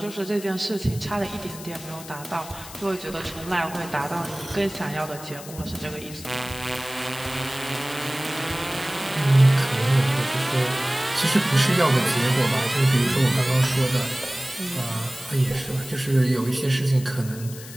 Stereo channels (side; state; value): left; noise; hiss, 15 dB below the sound